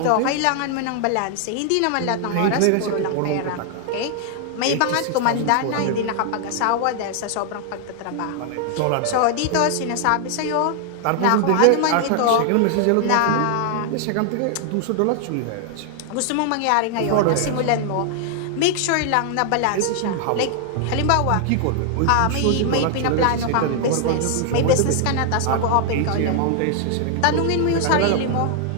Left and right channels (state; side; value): different; both; correlation 0.00